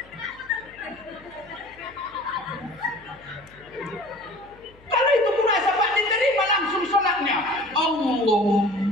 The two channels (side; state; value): left; noise; hum, 26 dB below the sound